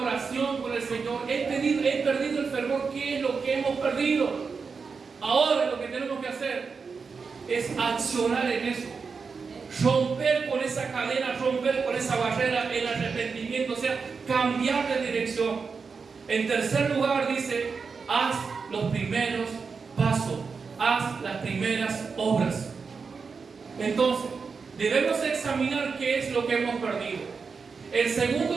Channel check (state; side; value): quieter; left; 5.2 dB